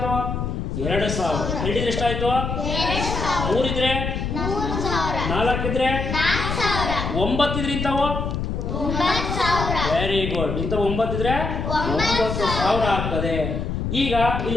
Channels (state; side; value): noise; left; rumble, 3 dB below the sound